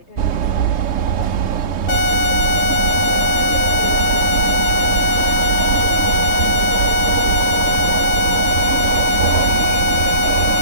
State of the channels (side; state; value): right; late; 3.3 ms